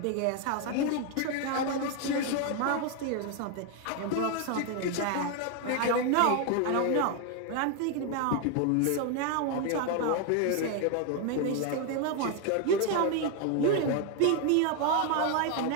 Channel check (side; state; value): both; different; correlation 0.01